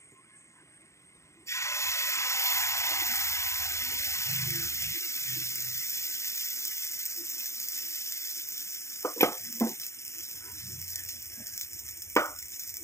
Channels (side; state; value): right; late; 0.14 ms